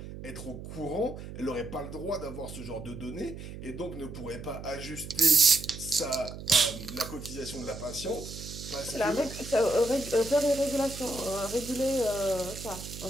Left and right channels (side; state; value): right; noise; hum, 11 dB below the sound